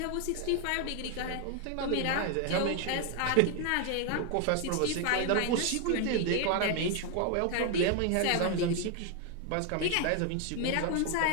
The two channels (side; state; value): both; different; correlation 0.00